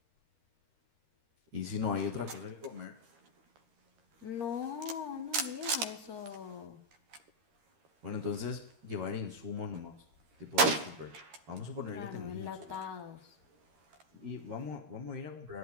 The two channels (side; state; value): left; late; 13 ms